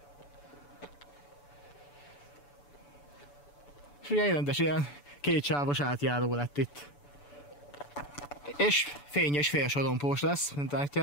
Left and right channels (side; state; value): right; late; 6.9 ms